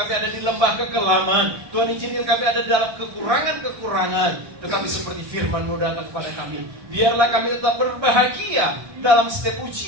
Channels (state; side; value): late; left; 1.7 ms